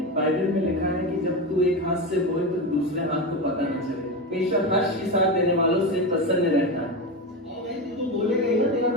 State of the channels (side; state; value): both; normal; correlation 0.18